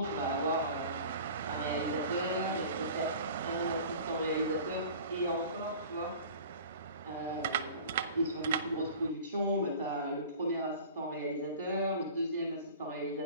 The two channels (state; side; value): inverted; both; correlation -0.42